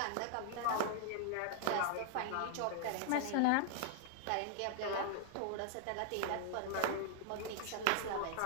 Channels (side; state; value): both; different; correlation -0.01